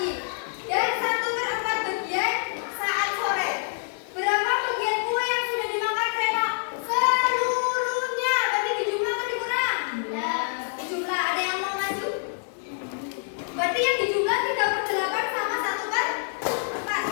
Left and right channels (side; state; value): right; silent; digital silence